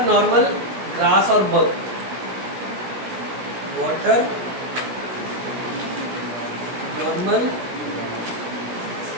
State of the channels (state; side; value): late; left; 16 ms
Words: नॉर्मल, ग्रास और बग। वाटर, नॉर्मल,